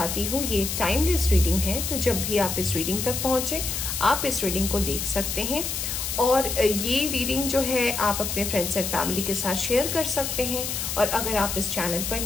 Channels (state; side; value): noise; left; hiss, 3 dB below the sound